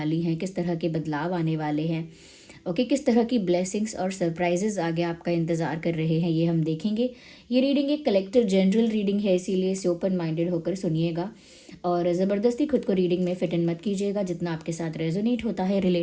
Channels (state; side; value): identical; both; correlation 1.00